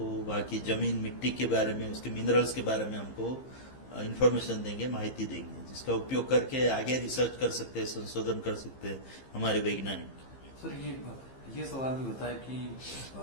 वहाँ की जमीन, मिट्टी के बारे में, उसके मिनरल्स के बारे में हमको इंफॉर्मेशन देंगे, माहिती देंगे, जिसका उपयोग करके आगे रिसर्च कर सकते हैं, संशोधन कर सकते हैं हमारे वैज्ञानिक। सर ये सवाल भी होता है कि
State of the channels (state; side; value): late; right; 15 ms